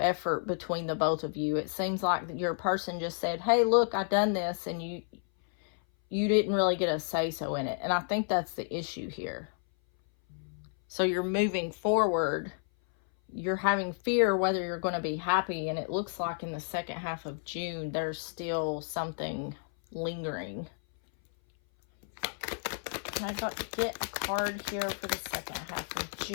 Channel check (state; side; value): silent; right; 57 dB below the other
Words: effort between the both of you. It seems like your person just said, hey, look, I've done this, and you didn't really get a say-so in it. And I think that's the issue here. So you're moving forward. You're having fear whether you're going to be happy, and it looks like in the second half of June there's still something lingering. I got to get a card here for the second half of